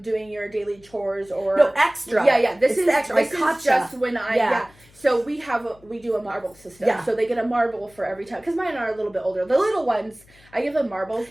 doing your daily chores or... No, extra. Yeah. This is extra. This is just when So we do a marble system. Yeah. So they get a marble for every time. Because mine are a little bit older. The little ones, I give them marbles,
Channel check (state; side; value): noise; left; hum, 27 dB below the sound